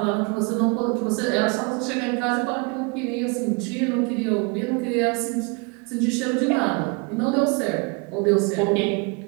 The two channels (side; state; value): left; quieter; 30.9 dB